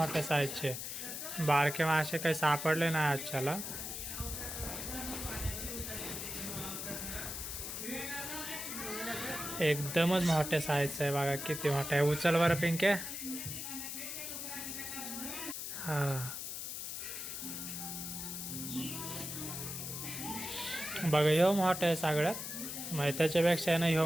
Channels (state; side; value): noise; left; hiss, 6 dB below the sound